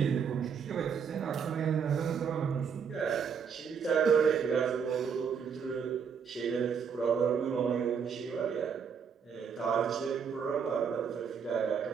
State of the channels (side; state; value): left; quieter; 6.7 dB